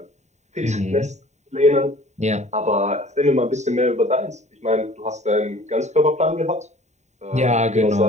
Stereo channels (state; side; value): late; left; 0.34 ms